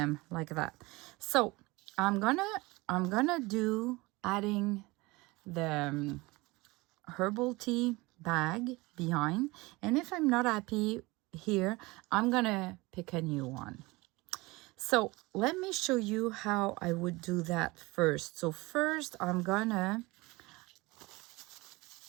like that. So I'm gonna do adding the herbal tea bag behind, and if I'm not happy here, I'm gonna pick a new one. So let me show you how I would do that first. So first I'm gonna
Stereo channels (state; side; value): quieter; left; 22.8 dB